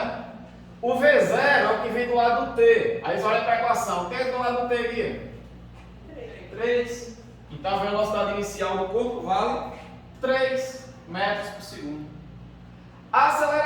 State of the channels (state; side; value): identical; both; correlation 1.00